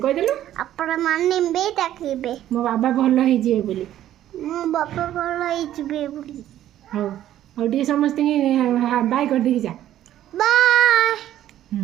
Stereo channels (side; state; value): left; quieter; 12.3 dB